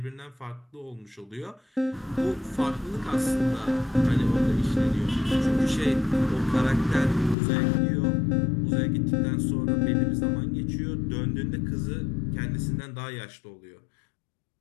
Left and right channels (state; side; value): drops out; right; at 7.4 s